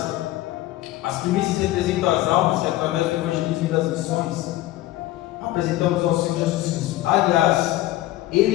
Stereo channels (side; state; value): right; quieter; 15.9 dB